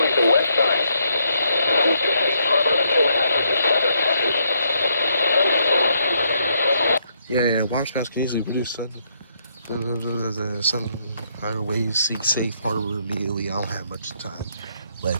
the west side. Move to Safe Harbor until hazardous weather passes. Yeah, water spouts can easily produce sun higher waves, seek safe harbor immediately. I don't have much time.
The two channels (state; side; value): inverted; both; correlation -0.74